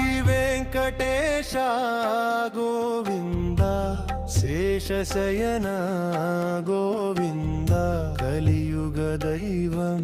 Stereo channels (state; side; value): identical; both; correlation 1.00